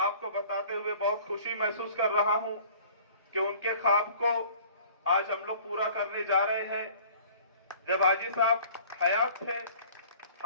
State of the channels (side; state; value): both; inverted; correlation -0.49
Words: बताते हुए बहुत खुशी महसूस कर रहा हूं कि उनके ख्वाब को आज हम लोग पूरा करने जा रहे हैं। जब हाजी साहब हयात थे,